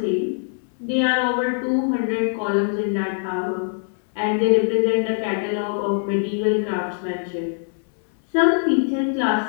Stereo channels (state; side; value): silent; right; digital silence